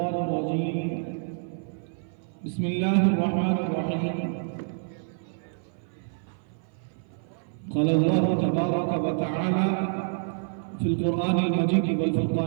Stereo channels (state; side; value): silent; left; 55 dB below the other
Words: الرجيم. بسم الله الرحمن الرحيم. قال الله تبارك وتعالى في القرآن المجيد